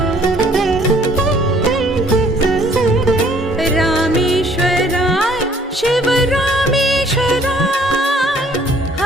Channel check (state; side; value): normal; both; correlation 0.59